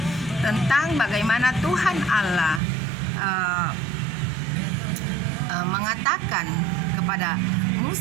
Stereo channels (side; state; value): left; drops out; at 2.6 s